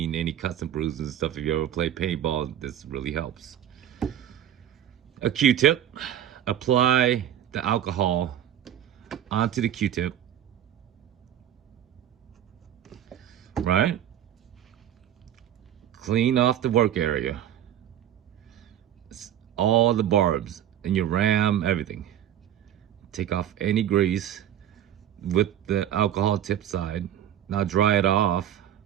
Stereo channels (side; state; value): left; quieter; 10.8 dB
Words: any cuts and bruises and stuff. If you ever play paintball, this really helps. A Q-tip. Apply the alcohol onto the Q-tip. Right? Clean off the work area. All the barbs and your ram, everything. Take off any grease with the alcohol tip side. Now dry it off.